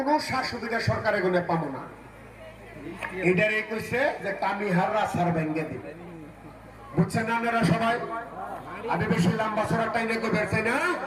সুবিধা সরকারের গুণে পাবো না। এটারে কইছে যে কামিহাররা সার ভেঙ্গে দিবে। বুঝছেন না আপনারা সবাই? আমি বেশি লম্বা সরার টাইমে করবেন না।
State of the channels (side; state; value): both; identical; correlation 1.00